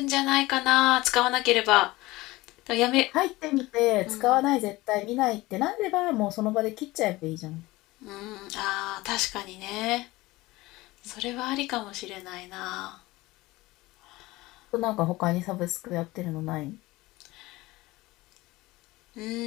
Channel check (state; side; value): quieter; right; 19.8 dB